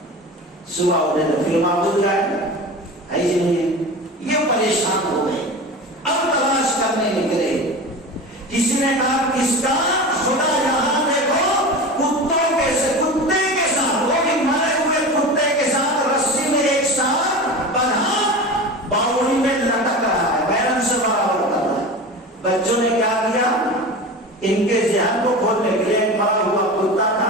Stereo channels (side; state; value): both; normal; correlation 0.30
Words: صبح اٹھے تو پھر معبود جائے ایسے نہیں ہے. یہ پریشان ہو گئے، اب تلاش کرنے نکلے. کسی نے کہا کس کا خدا یہاں دیکھو کتے کے ساتھ، وہ بھی مرے ہوئے کتے کے ساتھ رسی میں ایک ساتھ بندھا باوڑی میں لٹک رہا ہے، بیرن سے برابر کر رہا ہے. بچوں نے کیا کیا، ان کے ذہن کو کھولنے کے لیے ایک مرا ہوا کتا تھا،